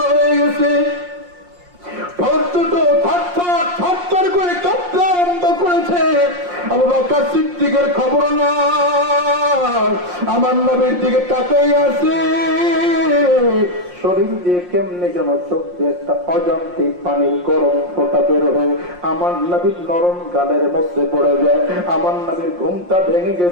হয়ে গেছে। করে কাঁপতে আরম্ভ করেছে। আবু বকর সিদ্দিকের খবর না, আমার নবীর দিকে তাকাই আছে। শরীর দিয়ে কেমনে যেন চোখ দিয়ে একটা অজান্তে পানির গরম ফোঁটা বের হয়ে আমার নবীর নরম গালের মধ্যে পড়ে যায়। আমার নবীর ঘুমটা ভেঙে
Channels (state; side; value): late; left; 5.6 ms